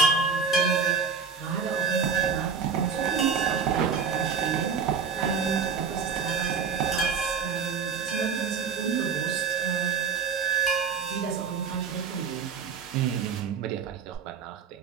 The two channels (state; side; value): quieter; left; 5.8 dB